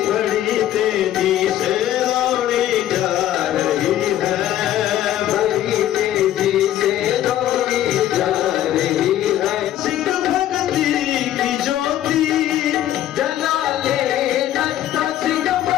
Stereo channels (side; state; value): right; quieter; 12.5 dB